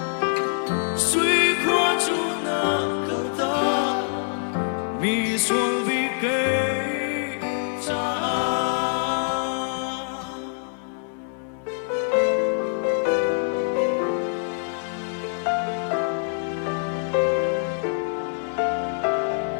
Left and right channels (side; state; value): right; silent; 62 dB below the other